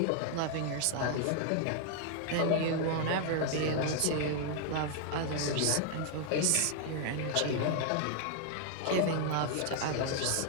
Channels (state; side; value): different; both; correlation 0.00